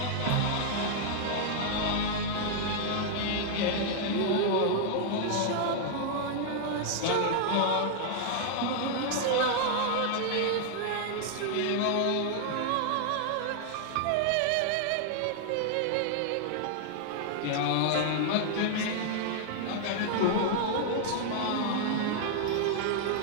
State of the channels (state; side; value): different; both; correlation -0.01